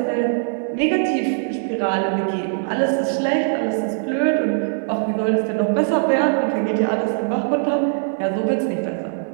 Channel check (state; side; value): silent; left; 63 dB below the other